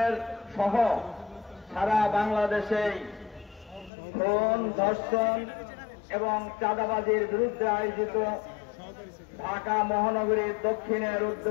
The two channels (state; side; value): drops out; right; at 3.9 s